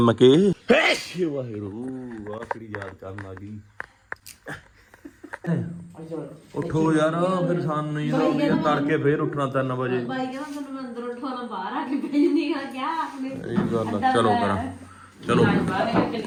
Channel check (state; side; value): identical; both; correlation 1.00